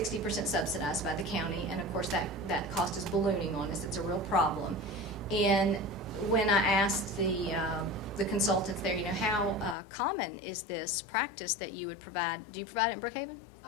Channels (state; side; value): drops out; right; at 9.8 s